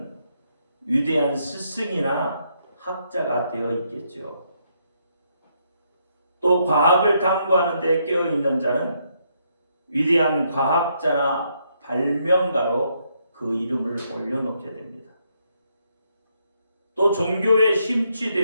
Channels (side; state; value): both; inverted; correlation -0.75